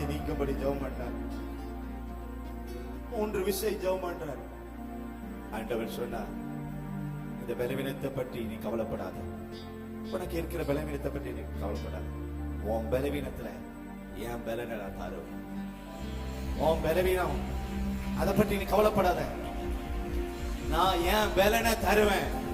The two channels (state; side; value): identical; both; correlation 1.00